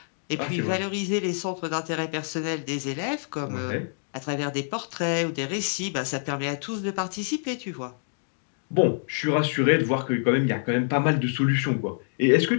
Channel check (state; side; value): silent; right; digital silence